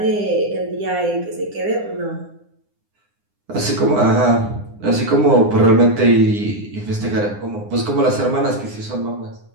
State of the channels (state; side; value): late; left; 9.8 ms